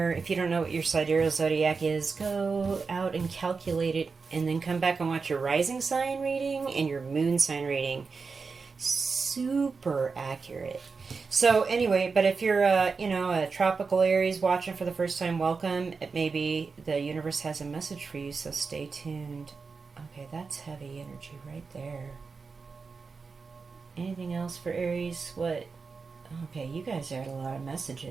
If you don't know what your sidereal zodiac is, go out and calculate it and then come back and watch your rising sign reading and your moon sign reading. Super accurate. So anyway, but if you're a tropical Aries watching for the first time, welcome. Maybe the universe has a message for you, so stay tuned. Okay, that's heavy energy right there. Anything else for Aries? What? Okay, you guys had a lot of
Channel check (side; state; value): left; quieter; 4.8 dB